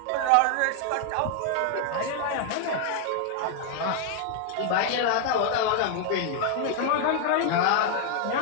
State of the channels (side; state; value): both; different; correlation 0.00